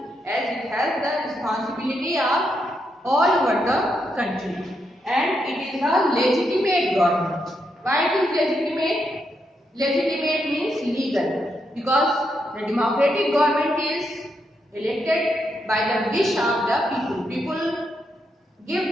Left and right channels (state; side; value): normal; both; correlation 0.81